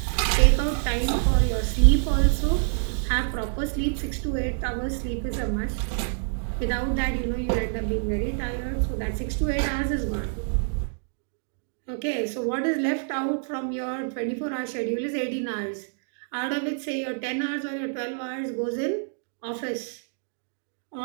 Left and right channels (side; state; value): left; silent; digital silence